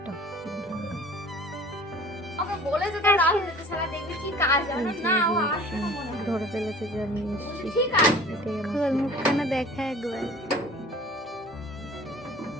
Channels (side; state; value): both; normal; correlation 0.46